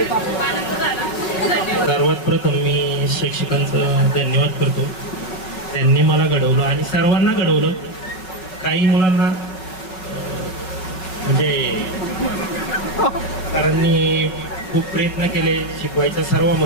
खूप आनंद झाला. धन्यवाद. सर्वात प्रथम मी शिक्षकांचं धन्यवाद करतो. त्यांनी मला घडवलं आणि सर्वांना घडवलं. काही मुलांना म्हणजे सरांनी खूप प्रयत्न केले शिकवायच्या सर्व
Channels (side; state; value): right; late; 5.4 ms